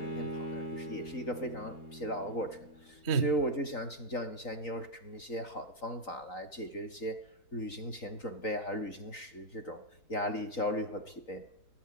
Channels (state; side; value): late; right; 3.9 ms